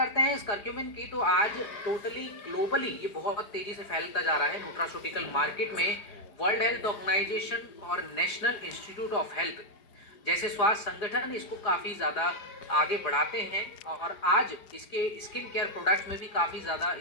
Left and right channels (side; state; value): right; late; 4.9 ms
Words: हैं इस करक्यूमिन की, तो आज टोटली ग्लोबली ये बहुत तेज़ी से फैलता जा रहा है न्यूट्रास्यूटिकल मार्केट में। वर्ल्ड हेल्थ ऑर्गेनाइजेशन और नेशनल इंस्टीट्यूट ऑफ हेल्थ जैसे स्वास्थ्य संगठन इसको काफ़ी ज़्यादा आगे बढ़ाते हैं, और आज इसके स्किन केयर प्रोडक्ट्स में भी काफ़ी ज़्यादा